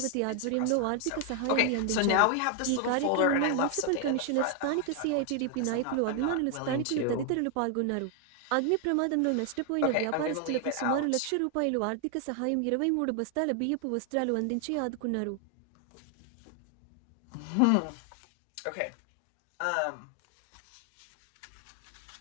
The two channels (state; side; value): different; both; correlation 0.00